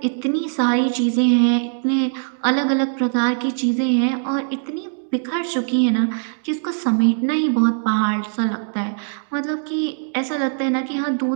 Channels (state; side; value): silent; left; digital silence